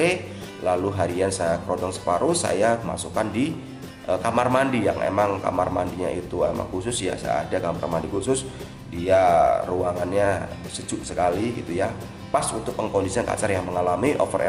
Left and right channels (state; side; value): identical; both; correlation 1.00